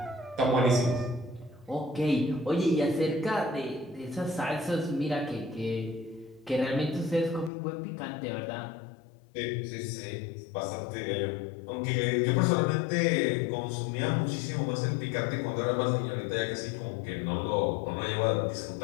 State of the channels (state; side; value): drops out; right; at 7.5 s